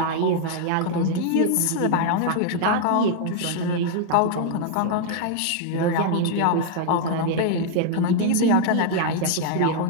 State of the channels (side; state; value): both; different; correlation 0.00